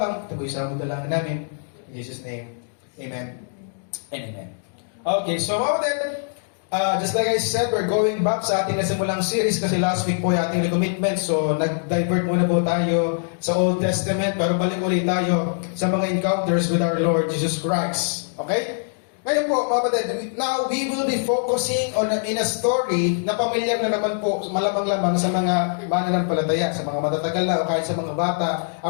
Ito po isang dalangin namin. In Jesus' name, Amen and Amen. Okay, so then, just like I said, we're going back sa ating nasimulang series kasi last week po yung ating recommitment. So, nag-divert muna po tayo sa Old Testament pero balik ulit tayo sa mga encounters with our Lord Jesus Christ. Okay? Ngayon po, mga kapatid, now we will be focusing on in a story na pamilyar na naman po, malamang-lamang sa mga mananampalataya, sa mga matatagal na o kahit sa mga bata.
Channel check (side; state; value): right; silent; digital silence